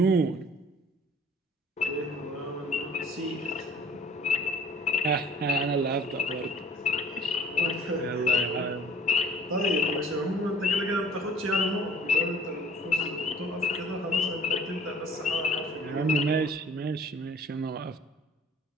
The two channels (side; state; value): both; normal; correlation 0.51